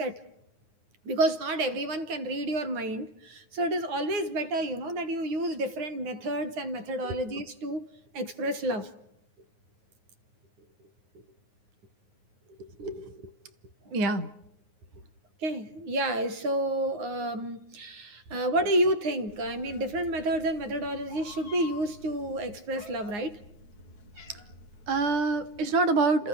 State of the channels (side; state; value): left; late; 9.5 ms